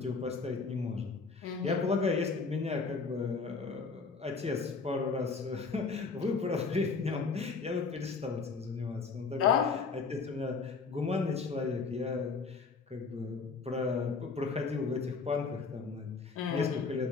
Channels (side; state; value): right; quieter; 4.6 dB